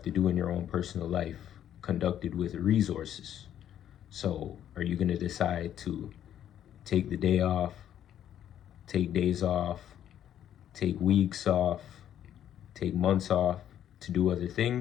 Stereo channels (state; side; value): quieter; right; 10.5 dB